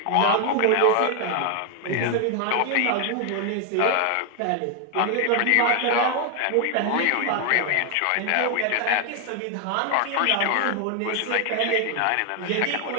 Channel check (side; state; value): both; different; correlation 0.00